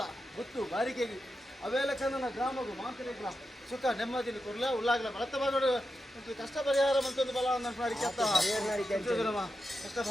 ಗೊತ್ತು ಬಾರಿಕೆಗೆ ಅವೆಲ್ಲ ಕನ್ನ ಗ್ರಾಮಗು ಮಾಂತ ರೆಗ್ಲ ಸುಖ ನೆಮ್ಮದಿನ ಕೊರ್ಲ ಉಳ್ಳಾಗ್ಲ ಬಳತ ಬಾಗೋಡು ಕಷ್ಟ ಪರಿಹಾರ ಮಂತೊಂದು ಬಲ ಮಾಡಿ ಕೆತ್ತ ಕಷ್ಟ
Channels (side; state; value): both; normal; correlation 0.89